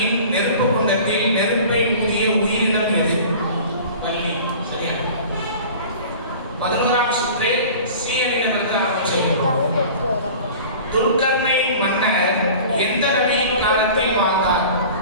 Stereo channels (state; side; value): inverted; both; correlation -0.41